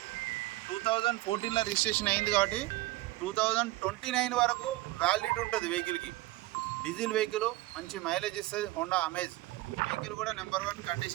2014లో రిజిస్ట్రేషన్ అయింది కాబట్టి 2029 వరకు వ్యాలిడిటీ ఉంటుంది వెహికల్కి. డీజిల్ వెహికల్ మంచి మైలేజ్ ఇస్తుంది. హోండా అమేజ్ వెహికల్ కూడా నెంబర్ 1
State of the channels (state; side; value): quieter; left; 18.7 dB